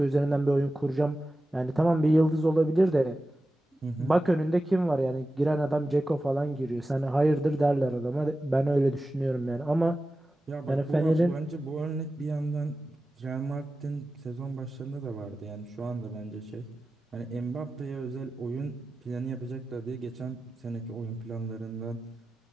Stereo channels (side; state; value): both; normal; correlation 0.94